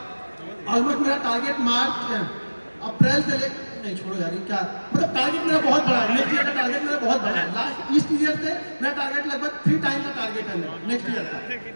ऑलमोस्ट मेरा टारगेट मार्च अप्रैल से ले, नहीं छोड़ो यार, क्या मतलब टारगेट मेरा बहुत बड़ा है, नेक्स्ट ईयर का टारगेट मेरा बहुत बड़ा है। लास्ट इस ईयर से मेरा टारगेट लगभग 3 टाइम का टारगेट है मेरा नेक्स्ट ईयर का।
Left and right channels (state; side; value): inverted; both; correlation -1.00